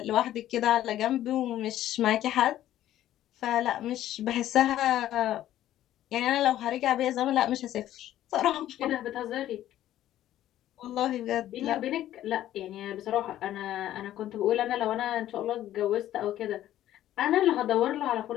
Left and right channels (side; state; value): right; quieter; 12.9 dB